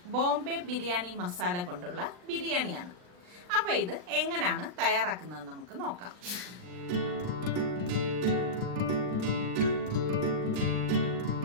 ബോംബെ ബിരിയാണി മസാല കൊണ്ടുള്ള ബിരിയാണിയാണ്. അപ്പൊ ഇത് എങ്ങനെയാണ് തയ്യാറാക്കുന്നത് നമുക്ക് നോക്കാം.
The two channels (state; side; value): late; left; 39 ms